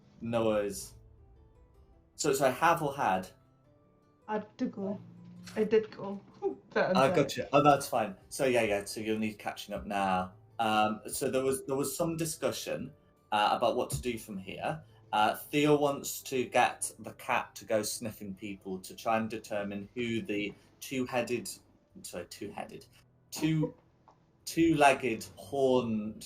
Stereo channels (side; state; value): both; identical; correlation 1.00